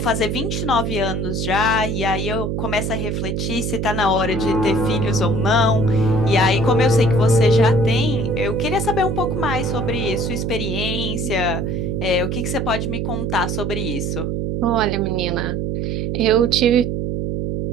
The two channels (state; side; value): noise; right; hum, 1 dB below the sound